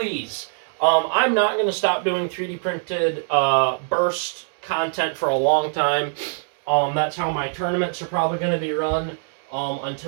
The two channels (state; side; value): silent; left; digital silence